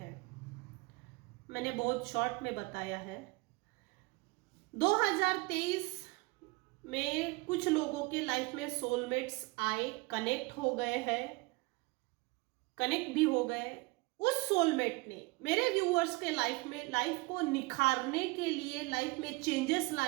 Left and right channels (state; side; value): quieter; left; 24.8 dB